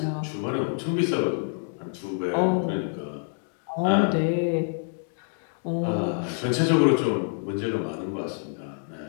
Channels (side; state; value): right; silent; 60 dB below the other